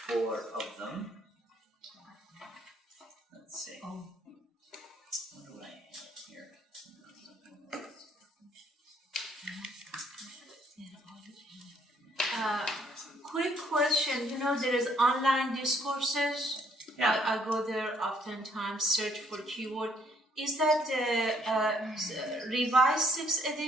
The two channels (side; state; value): both; normal; correlation 0.66